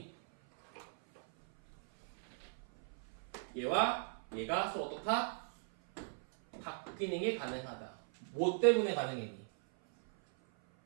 얘와 얘가 서로 어떻다? 바뀌는 게 가능하다. 뭐 때문에 가능했니?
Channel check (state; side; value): silent; left; 52 dB below the other